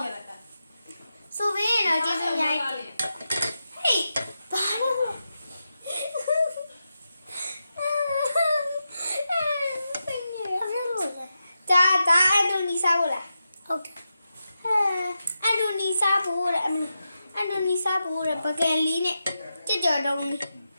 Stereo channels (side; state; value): both; inverted; correlation -0.89